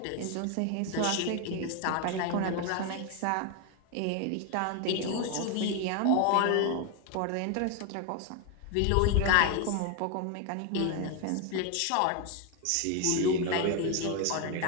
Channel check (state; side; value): different; both; correlation 0.01